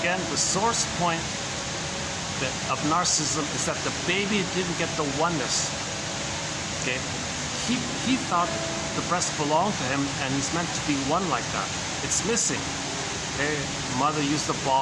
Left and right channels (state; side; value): identical; both; correlation 1.00